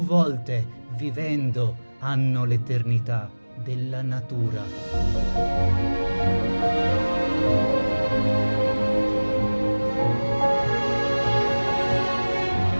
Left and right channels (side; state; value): both; inverted; correlation -1.00